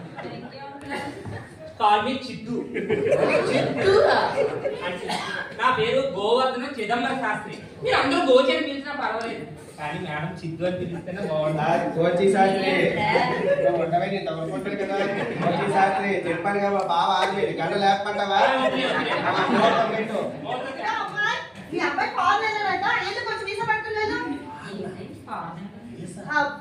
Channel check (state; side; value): identical; both; correlation 1.00